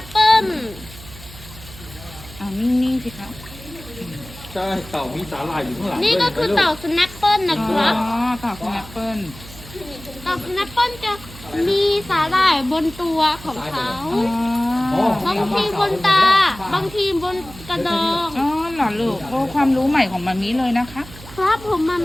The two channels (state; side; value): noise; right; hum, 17 dB below the sound